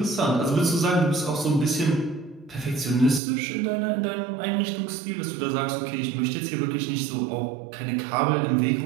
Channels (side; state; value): left; drops out; at 3.2 s